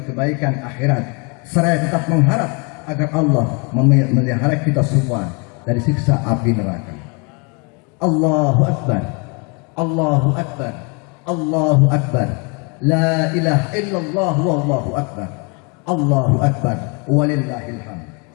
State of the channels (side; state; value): right; quieter; 32.9 dB